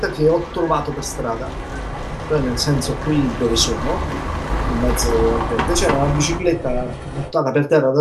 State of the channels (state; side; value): identical; both; correlation 1.00